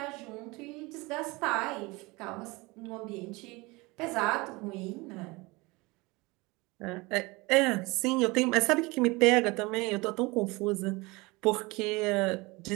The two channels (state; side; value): quieter; left; 24.1 dB